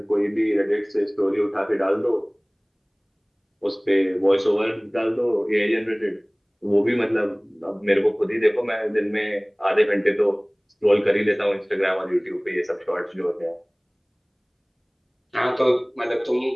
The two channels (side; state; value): both; identical; correlation 1.00